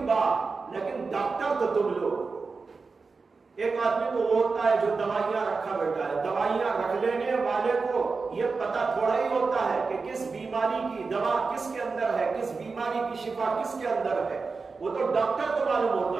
لیکن ڈاکٹر تو تم لوگ۔ ایک آدمی تو وہ ہوتا ہے جو دوائیاں رکھا بیٹھا ہے، دوائیاں رکھ لینے والے کو یہ پتہ تھوڑا ہی ہوتا ہے کہ کس بیماری کی دوا کس کے اندر ہے، کس بیماری کی شفا کس کے اندر ہے، وہ تو ڈاکٹر کو معلوم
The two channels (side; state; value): left; quieter; 4.4 dB